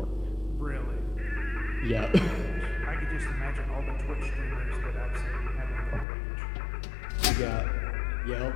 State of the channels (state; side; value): drops out; right; at 6.1 s